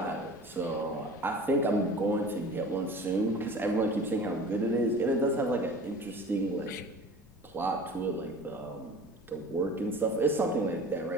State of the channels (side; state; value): left; noise; rumble, 28 dB below the sound